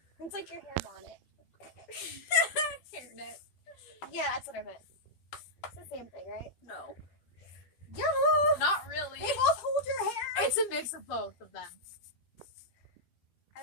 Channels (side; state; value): right; late; 12 ms